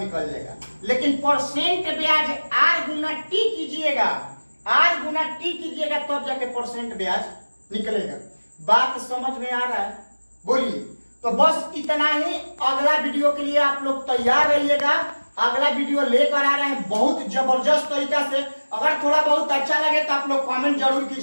जाएगा। लेकिन परसेंट ब्याज R गुना T कीजिएगा, R गुना T कीजिएगा तब जाके परसेंट ब्याज निकलेगा। बात समझ में आ रहा है, बोलिए। तो बस इतना ही, अगला वीडियो के लिए आप लोग तैयार रहिएगा। अगला वीडियो लेकर आ रहे हैं बहुत जबरदस्त तरीका से। अगर थोड़ा बहुत अच्छा लगे तो आप लोग कमेंट जरूर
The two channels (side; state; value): both; inverted; correlation -1.00